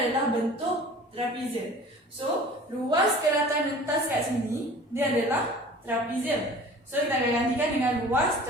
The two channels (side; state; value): both; normal; correlation 0.44